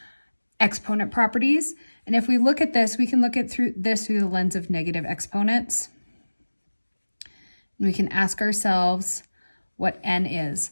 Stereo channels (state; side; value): inverted; both; correlation -1.00